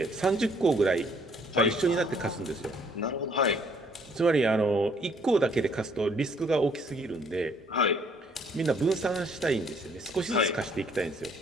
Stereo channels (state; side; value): normal; both; correlation 0.63